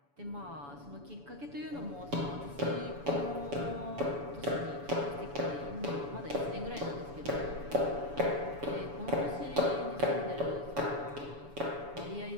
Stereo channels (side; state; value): left; late; 7.0 ms